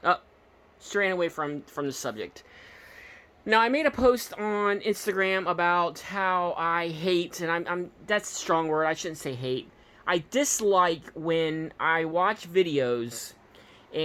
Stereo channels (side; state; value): both; identical; correlation 1.00